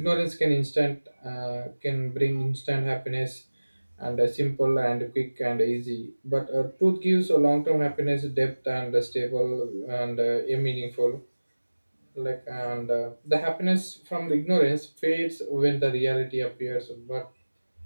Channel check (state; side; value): inverted; both; correlation -1.00